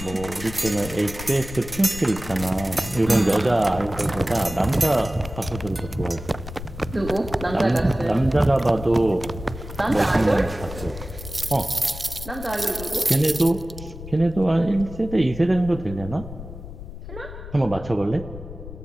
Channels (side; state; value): left; noise; rumble, 12 dB below the sound